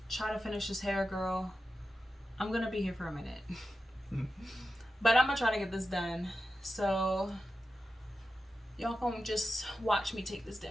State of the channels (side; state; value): both; normal; correlation 0.91